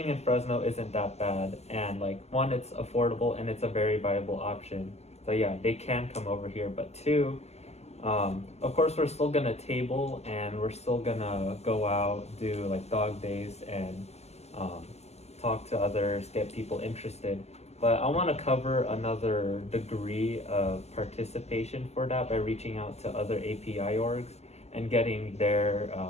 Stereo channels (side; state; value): right; late; 0.31 ms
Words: in Fresno isn't that bad, and like one, it's affordable and it's a very viable option. So yeah, they can come over here. But two, of course we're still gonna table and we're still gonna go out, do like dog days and talk to others, get people interested. But I want to cover another degree of participation for that by reaching out to other API orgs and getting their